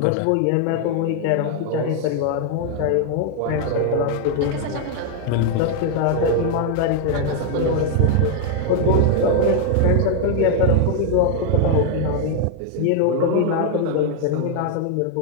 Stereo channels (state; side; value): different; both; correlation 0.00